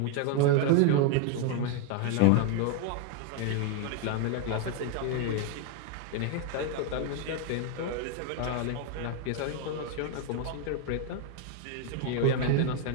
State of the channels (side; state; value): both; different; correlation 0.00